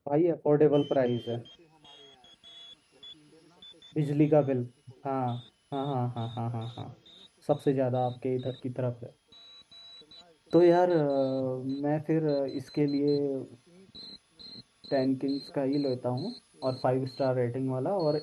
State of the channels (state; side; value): identical; both; correlation 1.00